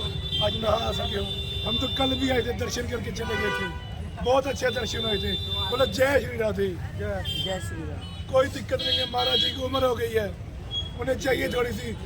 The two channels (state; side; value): identical; both; correlation 1.00